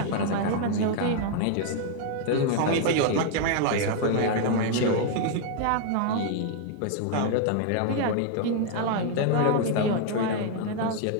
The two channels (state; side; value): different; both; correlation 0.00